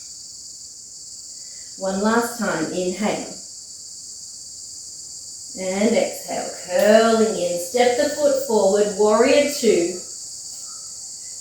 One last time. Inhale. And exhale. Curling in. Step the foot forward. Warrior 2.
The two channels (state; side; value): identical; both; correlation 1.00